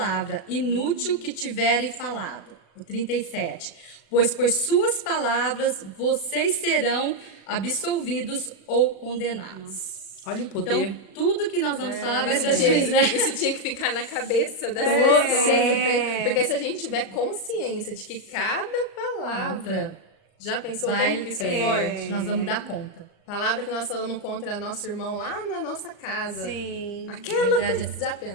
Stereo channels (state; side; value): late; right; 37 ms